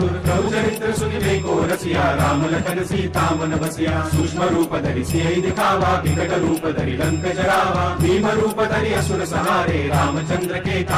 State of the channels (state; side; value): identical; both; correlation 1.00